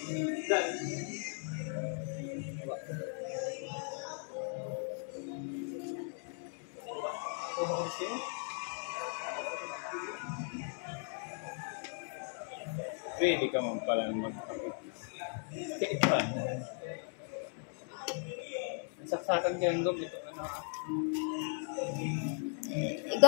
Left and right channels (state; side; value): silent; right; 53 dB below the other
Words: Pwede ka man pala magpapit. Saksakan ka yung ito.